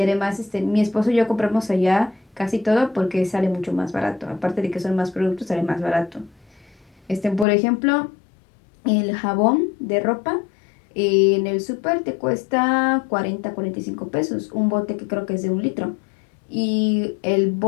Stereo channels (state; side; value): drops out; right; at 7.5 s